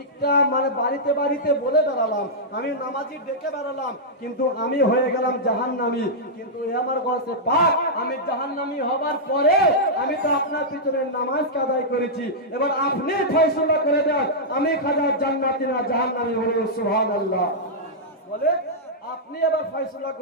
মানে বাড়িতে বাড়িতে বলে বেড়ালাম, আমি নামাজি ডেকে বেড়ালাম, কিন্তু আমি হয়ে গেলাম জাহান্নামী। কিন্তু হে আমার গৌসে পাক আমি জাহান্নামী হবার পরে আমি তো আপনার পিছনে নামাজ আদায় করেছি, এবার আপনি ফয়সালা করে দেন আমি খাজা জান্নাতি না জাহান্নামী। বলুন সুবহানাল্লাহ। বলে আপনি এবার ফয়সালা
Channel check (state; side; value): normal; both; correlation -0.09